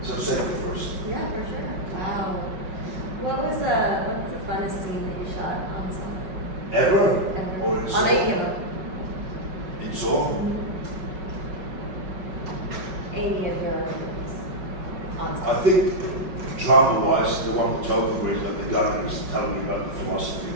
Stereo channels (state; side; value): late; left; 5.4 ms